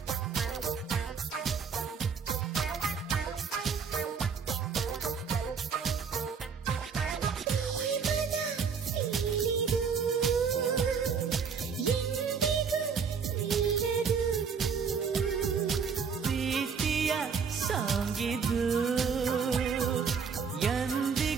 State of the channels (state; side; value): quieter; left; 6.1 dB